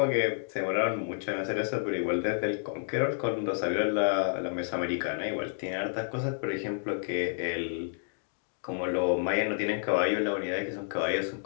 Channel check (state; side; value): silent; right; digital silence